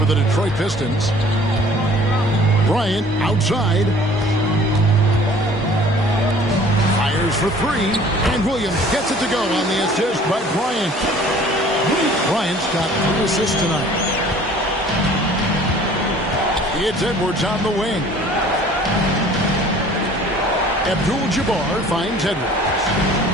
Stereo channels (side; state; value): both; normal; correlation 0.51